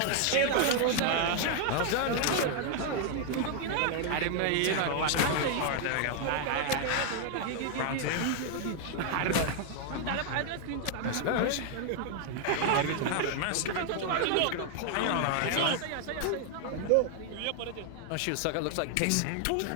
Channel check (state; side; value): different; both; correlation 0.00